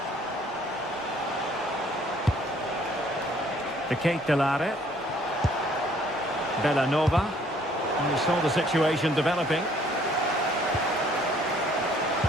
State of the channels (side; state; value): both; normal; correlation 0.61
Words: The Kate Delare. Bellanova. And we saw the situation developing.